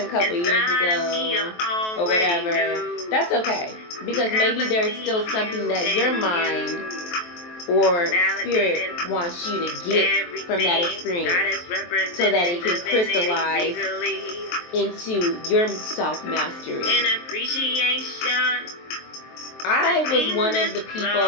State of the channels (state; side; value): late; right; 23 ms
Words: a couple years ago," or whatever, that's okay. Because maybe there's still something that your mind or spirit wants you to get from that experience so that it can crystallize into your self-mastery. I was one of the